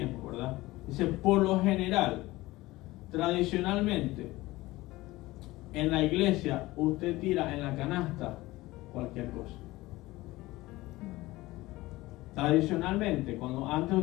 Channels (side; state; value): right; quieter; 19.1 dB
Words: ¿verdad? Dice, por lo general, tradicionalmente, en la iglesia, usted tira en la canasta cualquier cosa. Tradicionalmente, cuando antes